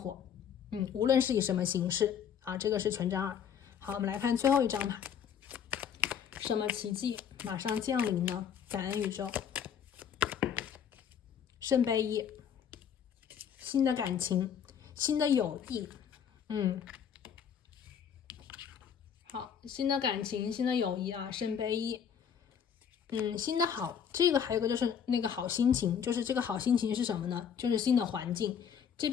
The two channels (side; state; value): right; quieter; 8.0 dB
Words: 无论是以什么形式这个是权杖2。好，我们来看最后一张牌，什么奇迹马上降临呢？感恩宇宙。圣杯一，新的感情，新的友谊，好，新的感情，新的友谊啊，圣杯一，新的好，这个还有一个就是那个好心情，就是这个好心情是什么呢？就是新的环境。这